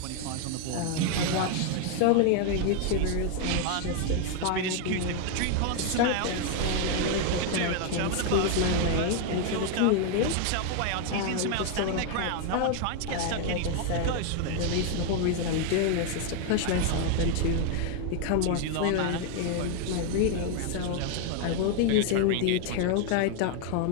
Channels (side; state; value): both; different; correlation 0.00